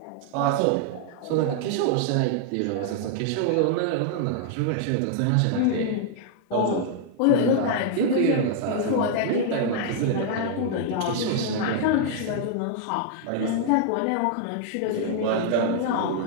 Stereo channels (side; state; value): both; different; correlation 0.00